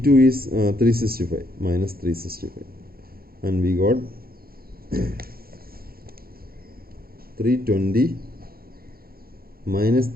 is 365 minus 365, and we got 320 minus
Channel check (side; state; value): left; late; 0.44 ms